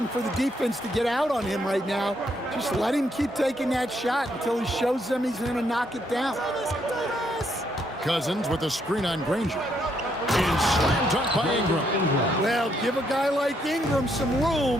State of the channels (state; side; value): normal; both; correlation 0.74